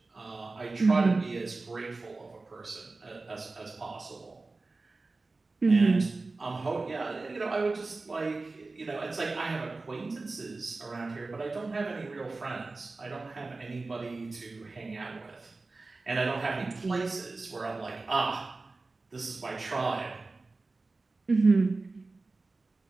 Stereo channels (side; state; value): left; quieter; 3.5 dB